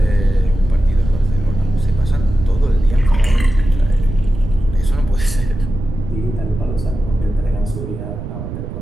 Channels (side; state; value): right; noise; rumble, 7 dB below the sound